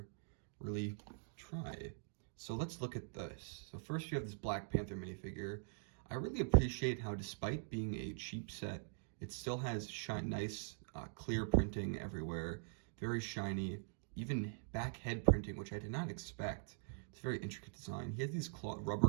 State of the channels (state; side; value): silent; left; digital silence